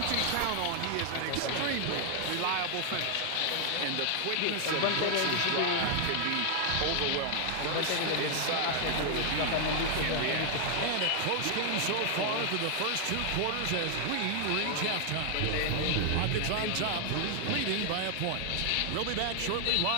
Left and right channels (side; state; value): both; different; correlation 0.00